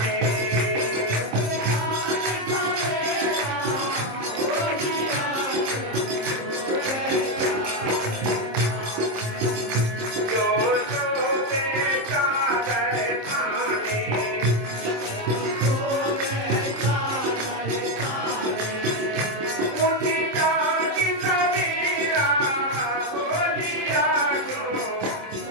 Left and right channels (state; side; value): late; left; 27 ms